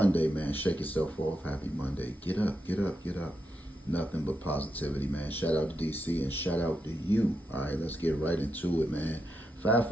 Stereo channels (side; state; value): both; normal; correlation 0.84